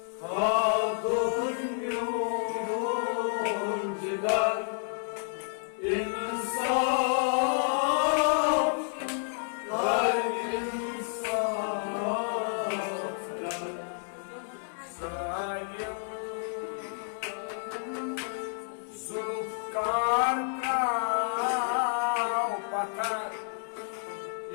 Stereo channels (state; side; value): silent; right; digital silence